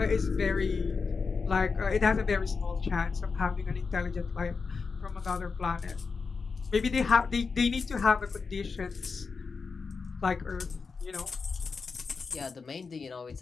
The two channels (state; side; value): quieter; right; 4.9 dB